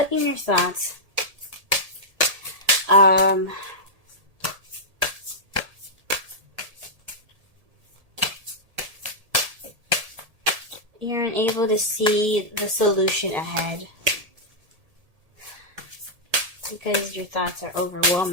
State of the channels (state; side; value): late; left; 1.7 ms